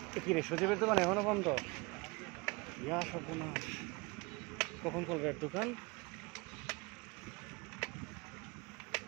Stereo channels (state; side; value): quieter; left; 26.5 dB